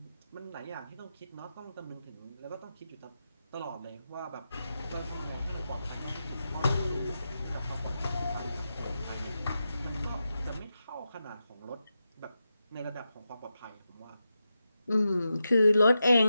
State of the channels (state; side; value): inverted; both; correlation -0.89